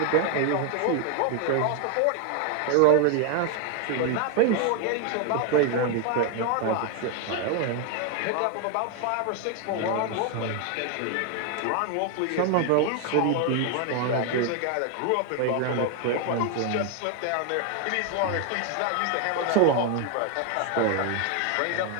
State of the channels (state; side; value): different; both; correlation 0.01